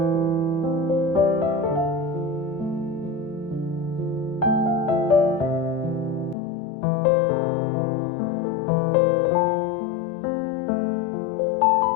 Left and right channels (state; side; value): drops out; right; at 6.4 s